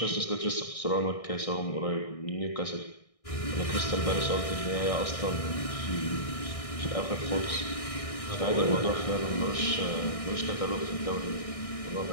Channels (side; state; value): right; late; 1.6 ms